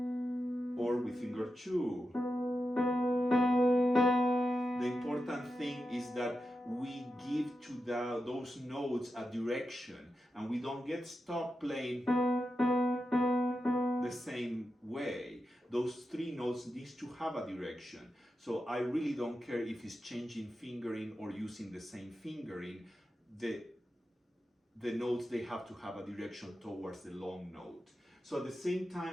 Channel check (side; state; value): both; normal; correlation 0.90